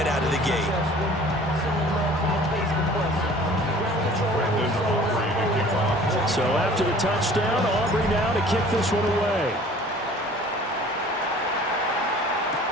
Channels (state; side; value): normal; both; correlation 0.49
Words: out of the gate. So after the touchdown, Aubrey now to kick this one away.